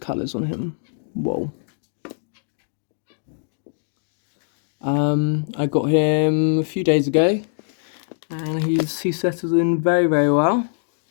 on him. Whoa. I got him a few days ago, and he settles in very, very well.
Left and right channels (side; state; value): right; silent; digital silence